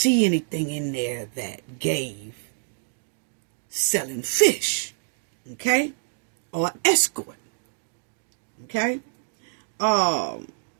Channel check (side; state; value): left; silent; digital silence